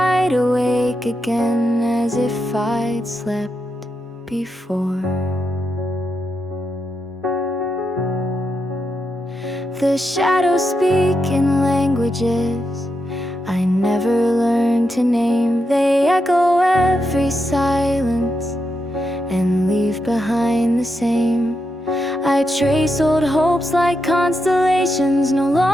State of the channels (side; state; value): both; normal; correlation 0.85